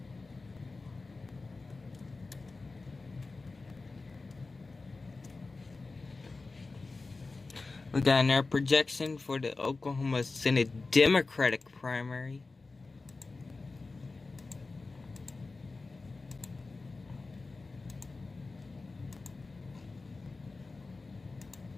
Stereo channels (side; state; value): right; quieter; 3.7 dB